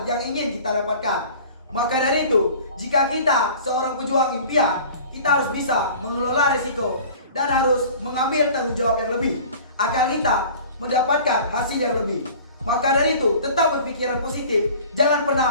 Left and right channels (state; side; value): inverted; both; correlation -0.44